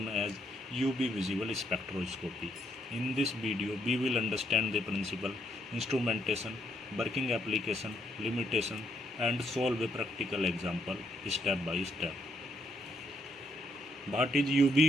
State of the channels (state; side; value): normal; both; correlation 0.73